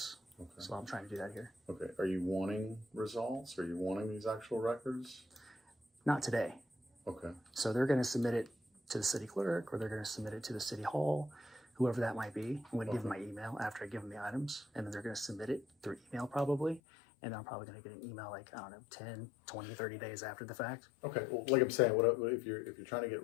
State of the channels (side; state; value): right; drops out; at 16.8 s